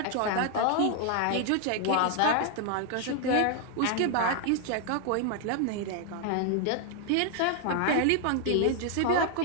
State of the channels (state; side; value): different; both; correlation 0.00